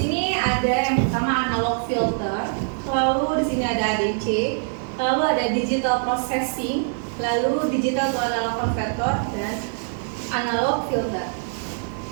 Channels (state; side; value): silent; left; 63 dB below the other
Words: ada yang pertama analog filter, lalu di sini ada ADC, lalu ada digital processing, lalu digital to analog converter, dan analog filter.